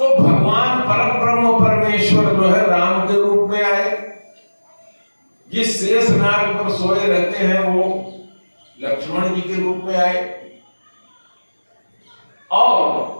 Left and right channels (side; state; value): both; inverted; correlation -1.00